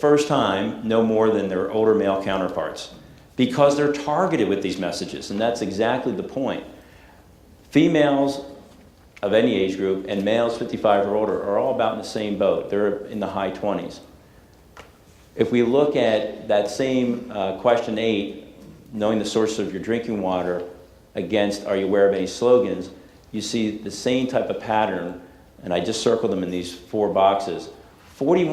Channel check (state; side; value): identical; both; correlation 1.00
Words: time, know more than their older male counterparts because they're targeted with these messages, and that's exactly the point. Females of any age group and males 55 or older are all about in the same boat. They're in the high 20s. If we look at that same question 8, knowing the source of your drinking water, against are you aware of any slogans, you see the same type of pattern, and I just circled them in these 4 boxes.